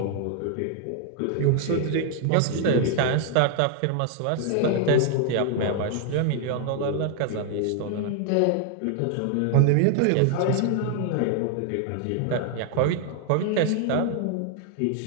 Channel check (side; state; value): both; different; correlation 0.00